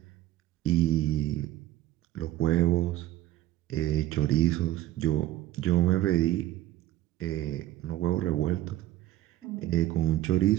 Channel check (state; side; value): quieter; left; 14.5 dB